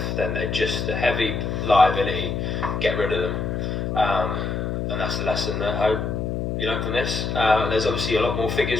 then they're just a heavy liability. Get rid of them. And that's the lesson that I hope you learn from this. There's obviously a lot more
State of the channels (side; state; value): left; noise; hum, 2 dB below the sound